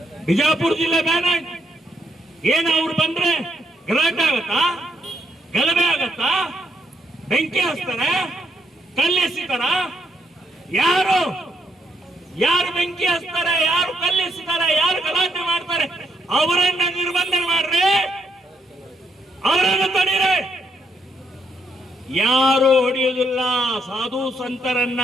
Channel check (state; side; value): normal; both; correlation 0.75